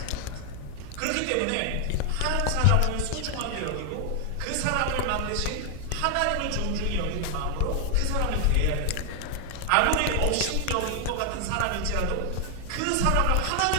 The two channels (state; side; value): different; both; correlation 0.00